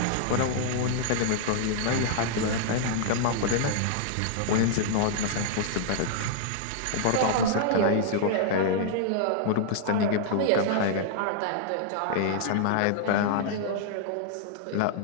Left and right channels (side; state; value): both; different; correlation -0.01